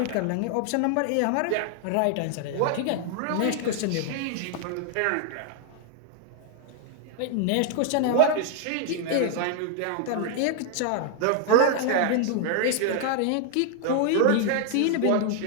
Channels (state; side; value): different; both; correlation 0.00